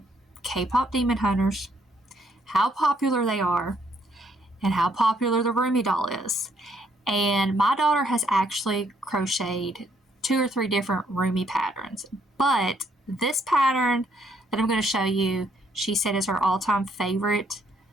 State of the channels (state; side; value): normal; both; correlation 0.70